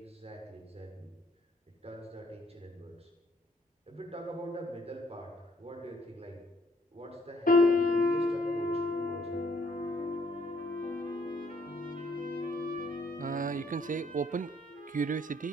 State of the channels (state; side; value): normal; both; correlation 0.66